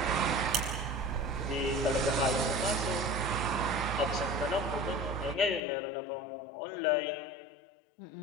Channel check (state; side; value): drops out; right; at 5.6 s